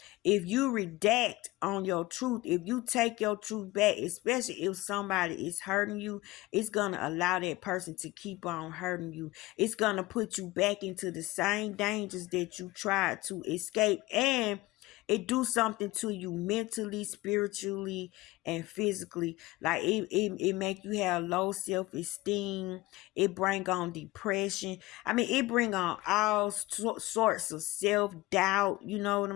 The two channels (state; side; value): quieter; right; 19.4 dB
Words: if you redact on your truth, if you take your truth back, especially if somebody is hurting you, it's going to allow that person to keep on hurting you. It's going to put you back into the same dangers that you tried to escape, and it do something to you mentally, spiritually, and physically. Like it make you have low self-esteem. It bring on depression. I mean, it bring on all sorts of self-doubt. You know what